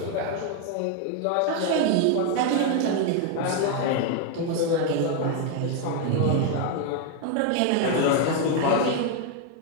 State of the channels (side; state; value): both; different; correlation 0.01